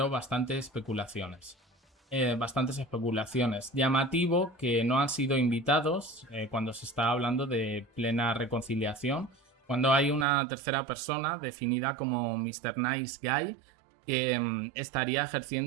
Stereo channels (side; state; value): left; drops out; at 10.2 s